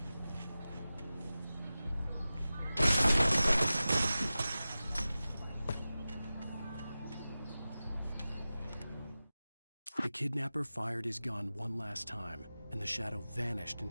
The kidnapper fired his gun one last time, and the shadow vanished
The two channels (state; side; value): inverted; both; correlation -0.95